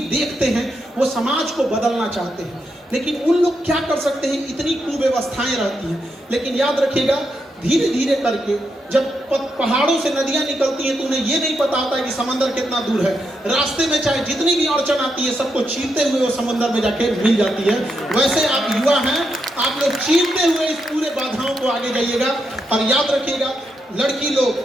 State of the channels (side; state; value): both; normal; correlation 0.82